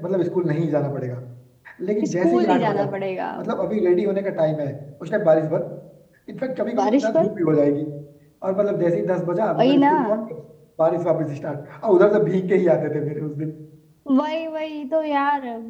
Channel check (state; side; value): identical; both; correlation 1.00